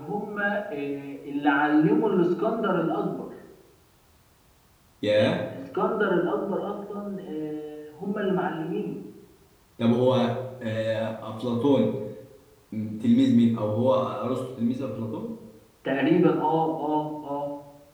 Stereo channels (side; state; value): both; identical; correlation 1.00